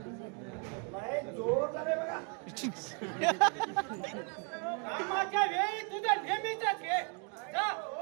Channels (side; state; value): left; quieter; 35.1 dB